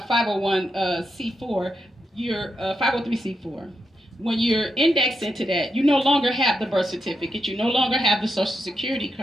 C4, you're 503 C4. When you're indexed into that, you no longer have the birth certificate, you no longer have the social security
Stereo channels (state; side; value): normal; both; correlation 0.84